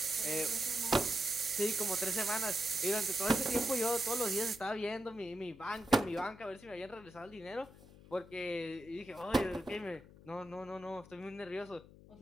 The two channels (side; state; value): left; noise; hum, 20 dB below the sound